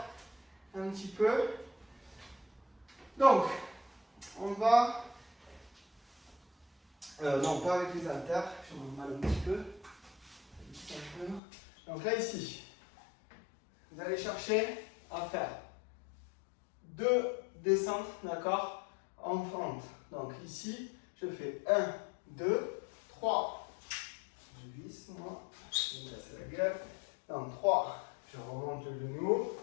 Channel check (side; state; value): right; drops out; at 11.4 s